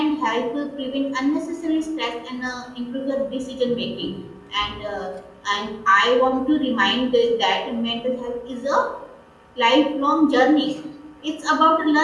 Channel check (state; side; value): identical; both; correlation 1.00